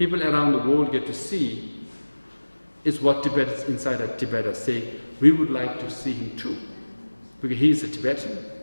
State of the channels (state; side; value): inverted; both; correlation -1.00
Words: around the world get to see is what Tibetans inside of Tibet are saying, we would like to see him too. Because he is a Tibetan,